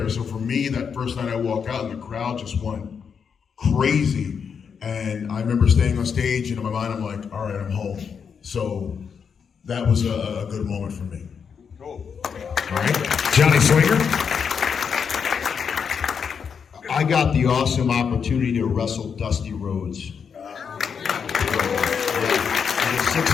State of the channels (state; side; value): quieter; right; 6.6 dB